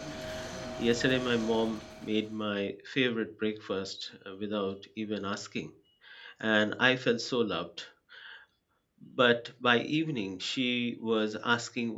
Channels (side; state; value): both; identical; correlation 1.00